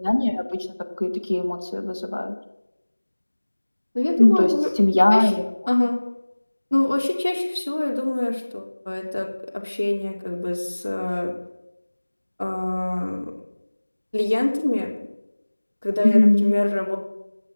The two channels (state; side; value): inverted; both; correlation -1.00